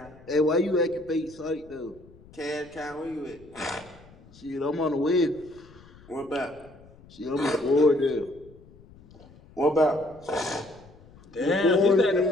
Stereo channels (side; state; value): left; noise; rumble, 24 dB below the sound